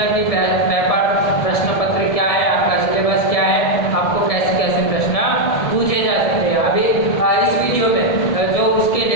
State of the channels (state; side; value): late; right; 1.7 ms